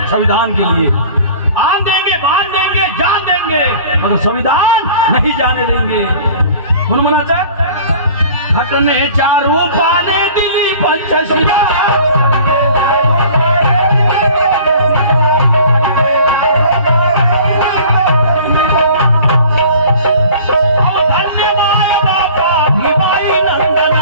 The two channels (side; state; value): both; inverted; correlation -0.46